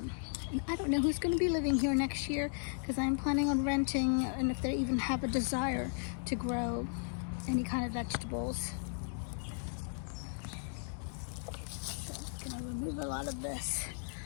and I don't know who's going to be living here next year, because I'm planning on renting, and if they even have a desire to grow any kind of vegetables. So I'm going to remove a lot of this.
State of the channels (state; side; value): silent; right; digital silence